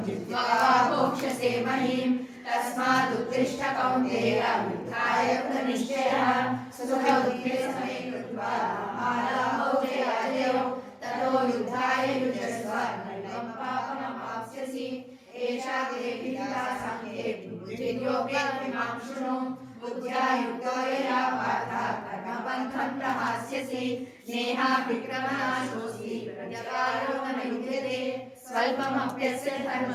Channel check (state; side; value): identical; both; correlation 1.00